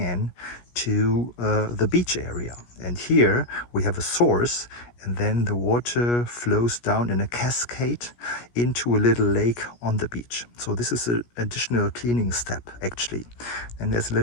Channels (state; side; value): late; right; 17 ms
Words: to the beach area. And here we have a source, and then the water flows down in a cascade into a little lake on the beach. So this is an additional cleaning step actually. And there's a